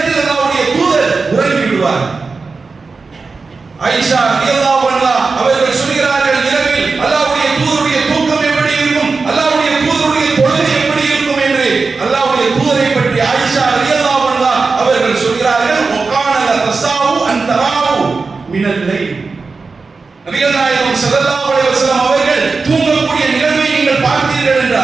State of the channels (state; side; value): quieter; left; 4.3 dB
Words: அல்லாஹ்வுடைய தூதர் உறங்கி விடுவார். ஆயிஷா ரலியல்லாஹு அன்ஹா அவர்கள் சொல்கிறார்கள், இரவில் அல்லாஹ்வுடைய தூதருடைய தூக்கம் எப்படி இருக்கும், அல்லாஹ்வுடைய தூதருடைய தொழுகை எப்படி இருக்கும் என்று அல்லாஹ்வுடைய தூதரை பற்றி ஆயிஷா ரலியல்லாஹு அன்ஹா அவர்கள் சொல்கிறார்கள், வகான தஸாவு அன் தராவு மினல் லைல். நபிகள் நாயகம் ஸல்லல்லாஹு அலைஹி வஸல்லம் அவர்கள் தூங்கக்கூடிய நிகழ்வை நீங்கள் பார்த்தீர்கள்